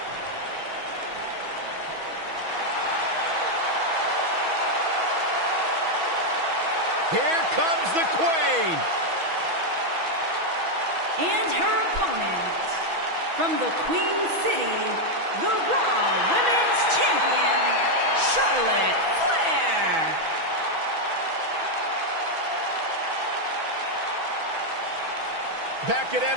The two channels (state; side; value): late; left; 6.1 ms